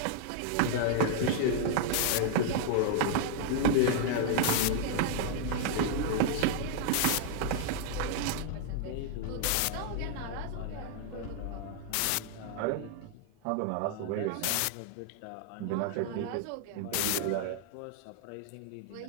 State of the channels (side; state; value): both; different; correlation 0.00